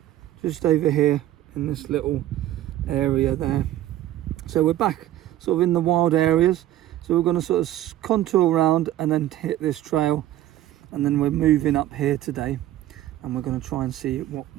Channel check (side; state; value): left; quieter; 13.6 dB